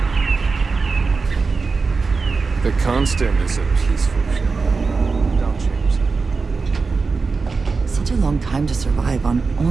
The Constant is a peaceful ship. Don't change that. Such a long time to survive on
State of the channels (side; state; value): left; quieter; 4.5 dB